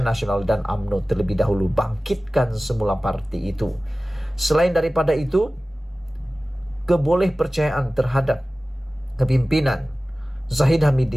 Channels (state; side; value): normal; both; correlation 0.97